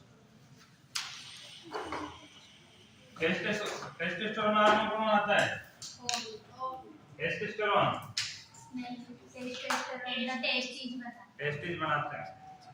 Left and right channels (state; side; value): identical; both; correlation 1.00